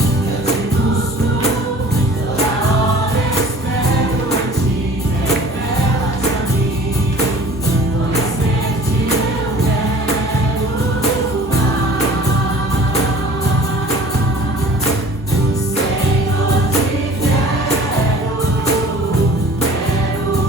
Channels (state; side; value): normal; both; correlation 0.46